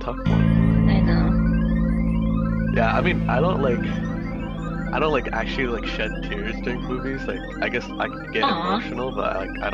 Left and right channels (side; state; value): both; identical; correlation 1.00